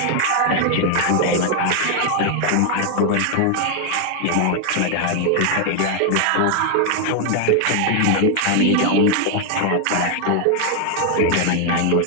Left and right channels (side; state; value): both; different; correlation 0.00